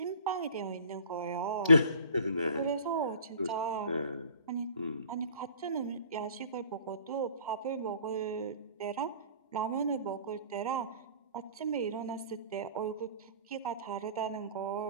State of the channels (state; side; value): inverted; both; correlation -0.47